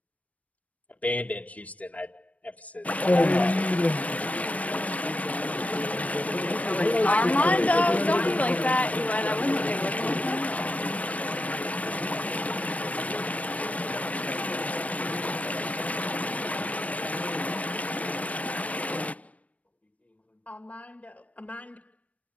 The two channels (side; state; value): right; late; 0.067 ms